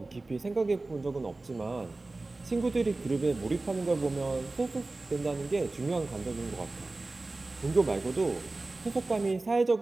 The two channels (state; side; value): quieter; left; 3.2 dB